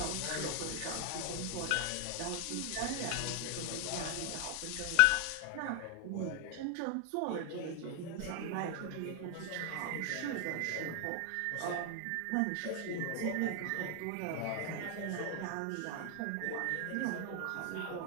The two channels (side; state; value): both; different; correlation 0.00